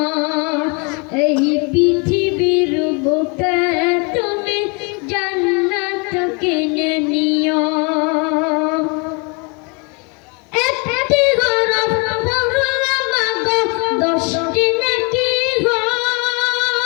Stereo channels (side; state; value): right; quieter; 32.3 dB